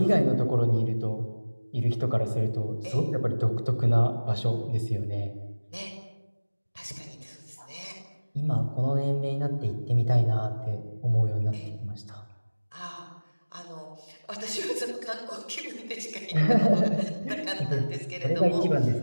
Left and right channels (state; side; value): inverted; both; correlation -1.00